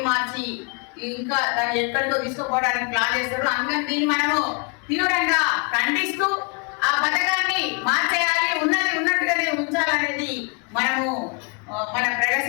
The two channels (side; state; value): right; quieter; 35.2 dB